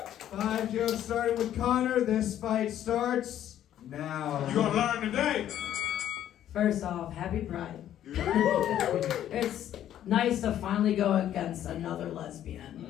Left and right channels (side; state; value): right; quieter; 11.3 dB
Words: 5 jokes starting with Conor. This fight starts now. You gonna learn today? First off, happy Pride. It's nice to finally go against another